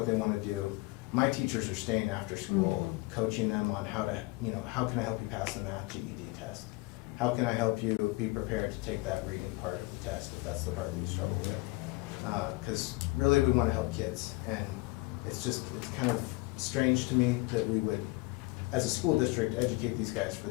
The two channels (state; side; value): quieter; right; 23.8 dB